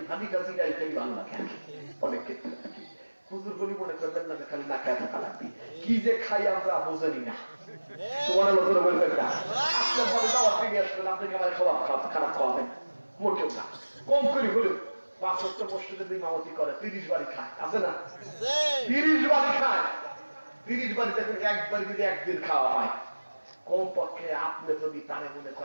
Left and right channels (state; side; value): inverted; both; correlation -1.00